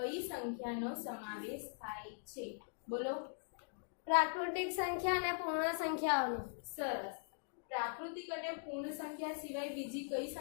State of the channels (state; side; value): silent; right; digital silence